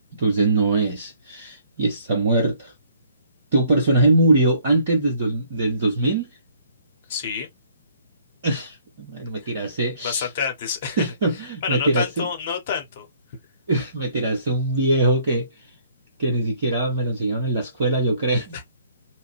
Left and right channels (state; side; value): inverted; both; correlation -0.61